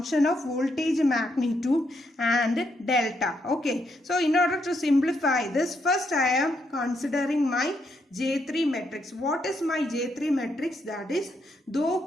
of voltage magnitude and delta. Okay, so in order to simplify this, first I am considering my J3 matrix. What is my J3 matrix? That is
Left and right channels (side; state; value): both; normal; correlation 0.77